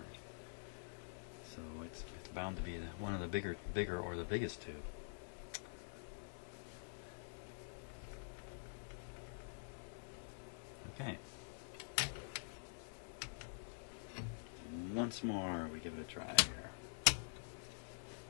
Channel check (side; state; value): right; silent; digital silence